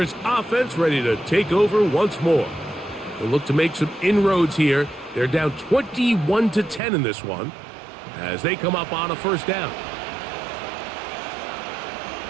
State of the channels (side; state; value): left; drops out; at 6.8 s